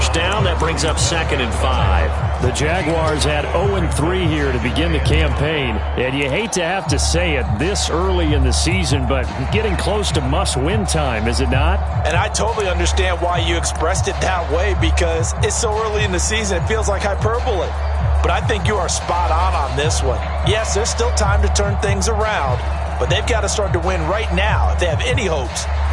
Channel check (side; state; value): both; identical; correlation 1.00